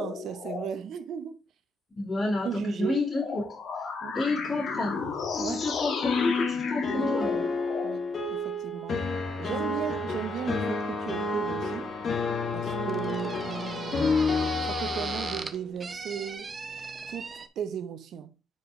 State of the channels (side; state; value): both; normal; correlation 0.75